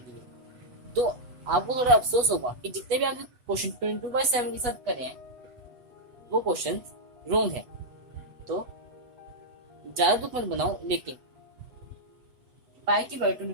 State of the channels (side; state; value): left; late; 8.0 ms